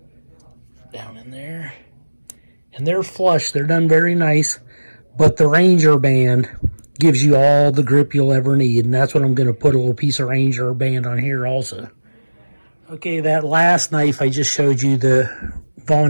down in there. And they're flush. They're done very nice. But the Ranger band gives you all the grip you'll ever need. And that's what I'm going to put a little piece of Ranger band on here also. Okay, that last knife I just showed you, the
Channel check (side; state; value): both; inverted; correlation -1.00